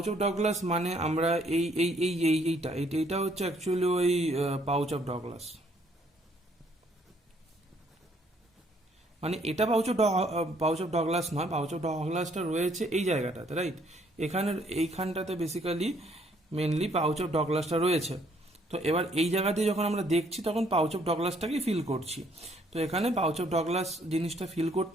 of Douglas মানে আমরা এইটা হচ্ছে অ্যাকচুয়ালি ওই পাউচ অফ ডগলাস, মানে এটা পাউচ অফ ডগলাস নয়, পাউচ অফ ডগলাসটা রয়েছে এই জায়গাটাতে, রাইট? এইখানটাতে বেসিক্যালি মেনলি পাউচ অফ ডগলাসটা রয়েছে। তো এবার এই জায়গা দিয়ে যখন আমরা দেখছি তখন পাউচ অফ ডগলাসটাকেই ফিল করছি। তো এখানে পাউচ অফ ডগলাস জিনিসটা ফিল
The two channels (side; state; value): both; normal; correlation 0.65